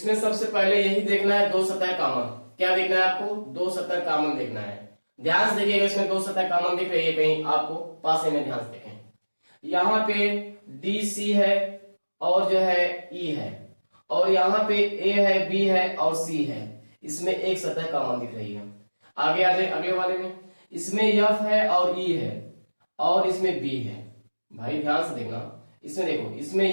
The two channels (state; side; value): inverted; both; correlation -1.00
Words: सबसे पहले यही देखना है 2 सतह कॉमन। क्या देखना है आपको, 2 सतह कॉमन देखना है। ध्यान से देखिएगा, इसमें 2 सतह कॉमन दिख रही है कहीं आपको, पासे में ध्यान से देखें। यहाँ पे डी सी है और जो है ई है, और यहाँ पे ए है, बी है और सी है। इसमें एक सतह कॉमन दिख रही है। आगे आ जाए अगले वाले में, इसमें एफ है और ई है और इसमें बी है। भाई ध्यान से देखना, इसमें देखो, इसमें